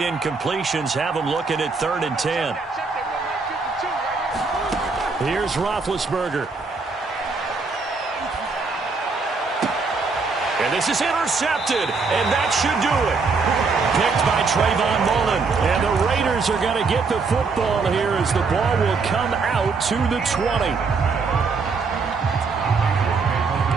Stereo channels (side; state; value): left; quieter; 4.5 dB